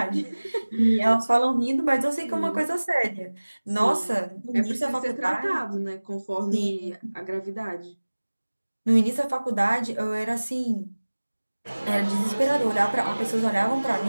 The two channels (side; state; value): both; inverted; correlation -1.00